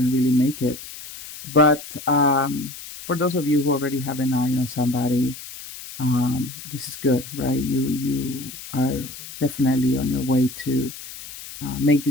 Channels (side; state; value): left; noise; hiss, 13 dB below the sound